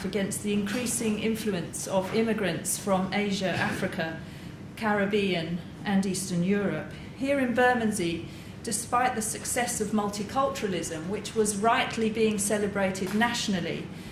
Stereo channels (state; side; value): identical; both; correlation 1.00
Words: against the increasing influence of immigrants from Asia, Africa, Caribbean, and Eastern Europe. Here in Bermondsey, despite the success of multiculturalism, which was rightly being celebrated nationally